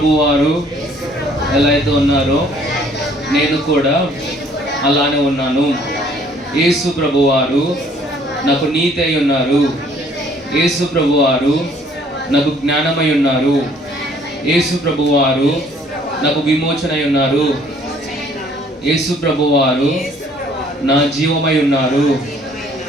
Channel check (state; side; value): normal; both; correlation 0.59